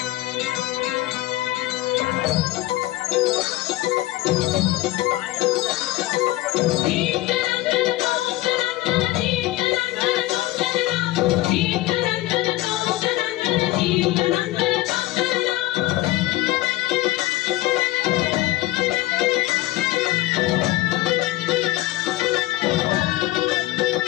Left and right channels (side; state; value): right; quieter; 17.5 dB